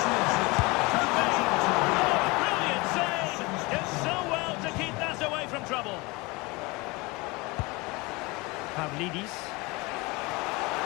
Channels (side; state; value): right; quieter; 24.8 dB